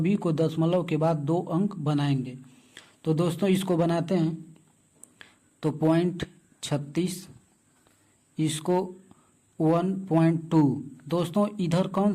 को दशमलव के बाद 2 अंक बनाएंगे। तो दोस्तों इसको बनाते हैं। तो 0.36, इसको 1.2। दोस्तों इधर कौन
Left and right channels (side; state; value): both; identical; correlation 1.00